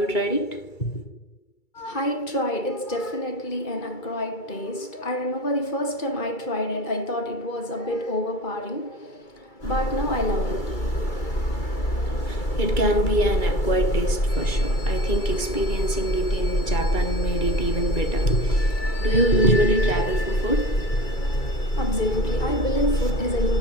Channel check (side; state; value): right; late; 2.3 ms